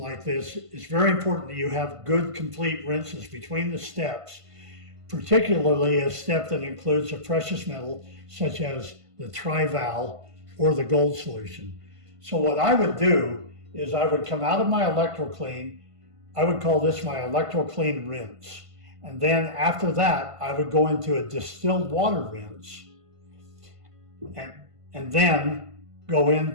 this, it's very important that you have good, complete rinses between the steps, particularly a step that includes a precious metal, such as the tri-val or the gold solution. So what I would do is I would come out of my electro-clean. I would call this my electro-clean rinse. And then after that, I would go into a distilled water rinse and then go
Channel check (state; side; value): late; left; 1.5 ms